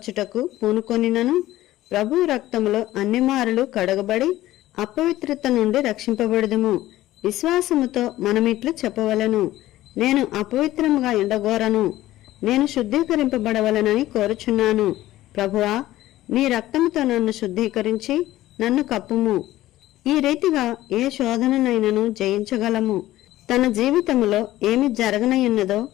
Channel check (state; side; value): quieter; right; 15.5 dB